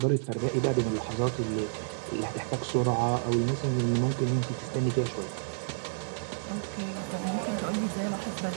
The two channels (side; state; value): left; silent; digital silence